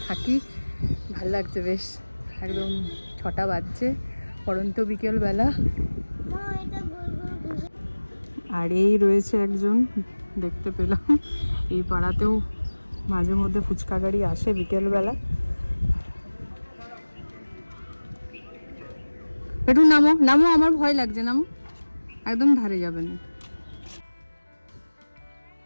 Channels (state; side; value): inverted; both; correlation -1.00